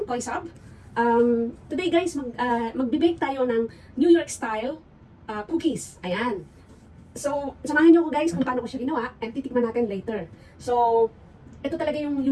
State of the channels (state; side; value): identical; both; correlation 1.00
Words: Koy Sab. Today guys, magbe-bake tayo ng New York style cookies. Ayan. So, samahan niyo ko guys kung paano ko siya ginawa and titikman natin later. So, ito talaga yung